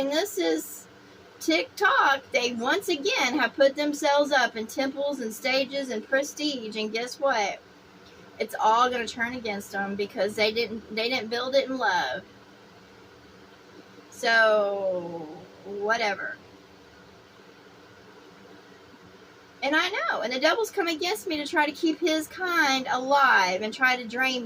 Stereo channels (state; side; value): identical; both; correlation 1.00